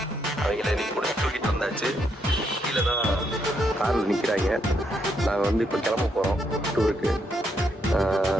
அவங்கள இன்னைக்கு கூட தூக்கிட்டு வந்தாச்சு. கீழே தான் காரில் நிற்கிறாங்க. நாங்கள் இப்போ கிளம்ப போகிறோம் டூருக்கு.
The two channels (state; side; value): normal; both; correlation 0.77